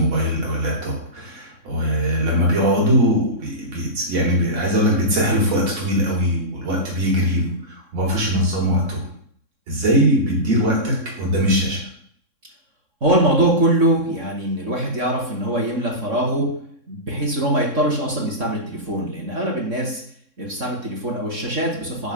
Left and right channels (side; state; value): left; late; 3.6 ms